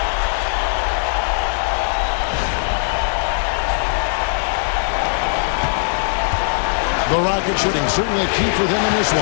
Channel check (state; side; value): silent; right; digital silence